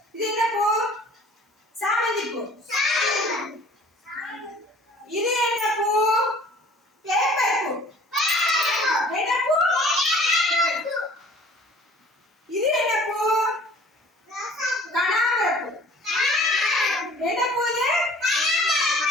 இது என்ன பூ? சாமந்தி பூ. இது என்ன பூ? பேப்பர் பூ. என்ன பூ? இது என்ன பூ? கனகாம்பர பூ. என்ன பூ இது?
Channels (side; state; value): both; normal; correlation 0.50